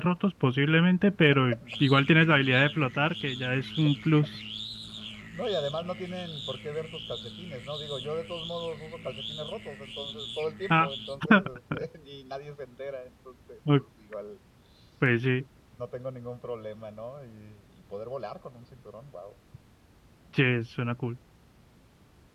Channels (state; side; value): identical; both; correlation 1.00